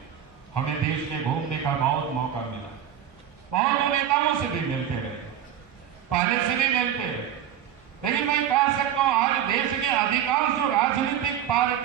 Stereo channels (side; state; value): left; quieter; 10.0 dB